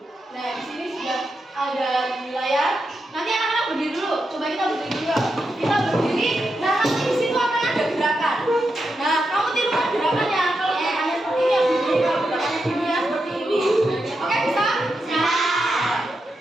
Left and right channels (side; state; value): both; normal; correlation 0.86